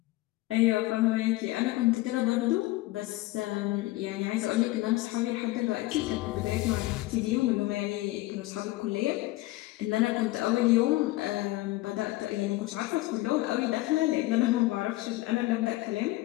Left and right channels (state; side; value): quieter; right; 19.0 dB